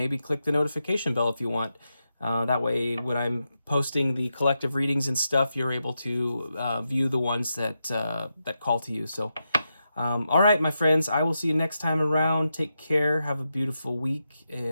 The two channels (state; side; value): inverted; both; correlation -0.87